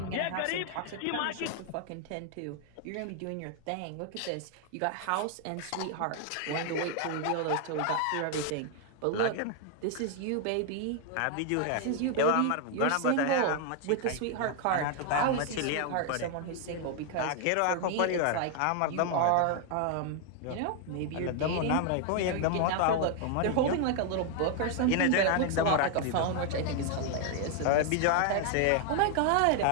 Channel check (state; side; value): different; both; correlation 0.00